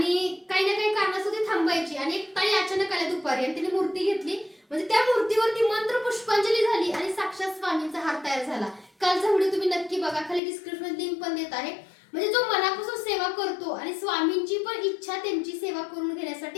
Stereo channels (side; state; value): right; drops out; at 10.4 s